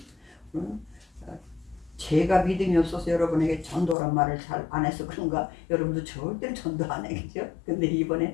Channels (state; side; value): drops out; right; at 4.0 s